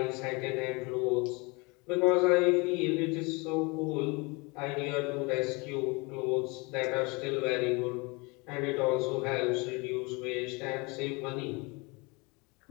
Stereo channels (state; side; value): quieter; right; 27.9 dB